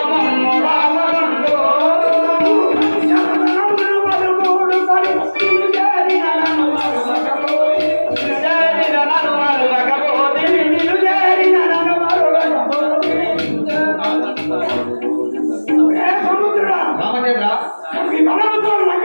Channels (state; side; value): inverted; both; correlation -1.00